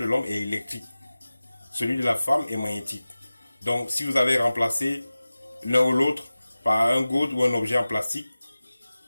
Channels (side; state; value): both; inverted; correlation -0.97